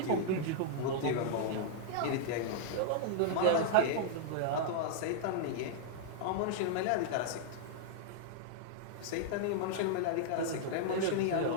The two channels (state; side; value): different; both; correlation -0.01